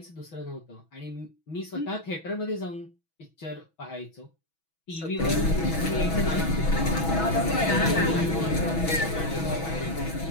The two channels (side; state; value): right; late; 6.1 ms